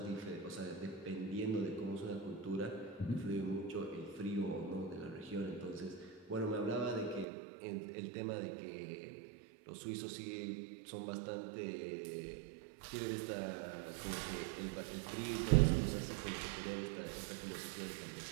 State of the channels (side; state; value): left; drops out; at 7.2 s